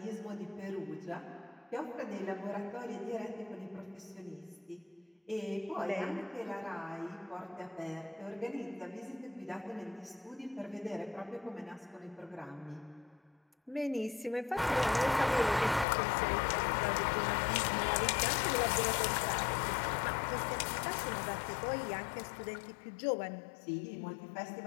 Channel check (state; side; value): drops out; right; at 15.9 s